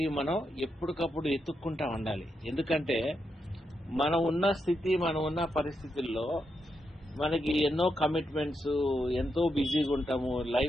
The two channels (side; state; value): both; normal; correlation 0.83